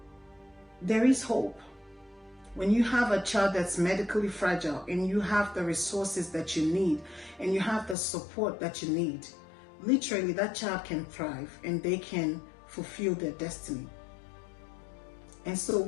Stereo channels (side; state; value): right; drops out; at 8.0 s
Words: there is hope. When you have a child that's medically fragile and you have the resources that you need and you have the support that you need, literally that child can thrive and they can fulfill their destiny. And so